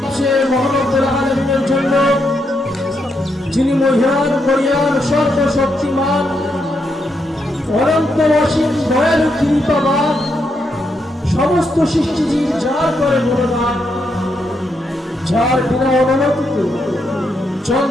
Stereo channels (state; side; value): normal; both; correlation 0.80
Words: মহানবুল আলামিনের জন্য, যিনি মহিয়ান মরিয়ান সর্বশক্তিমান অনন্ত অসীম দয়ালু কৃপাবান, সমস্ত সৃষ্টিজীব যার করে গুণগান, যার বিনা অনুমতিতে